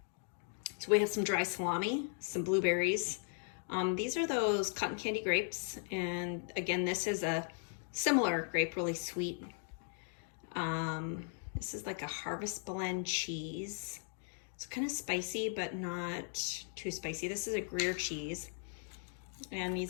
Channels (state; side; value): silent; right; 53 dB below the other